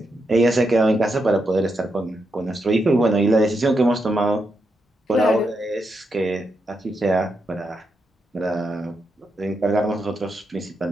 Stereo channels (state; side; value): normal; both; correlation 0.83